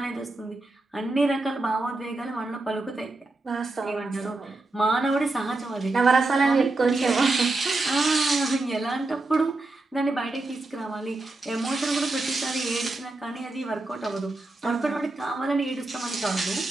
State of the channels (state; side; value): quieter; left; 3.1 dB